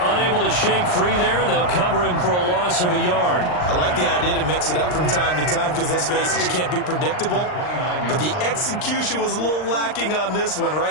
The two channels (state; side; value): late; right; 39 ms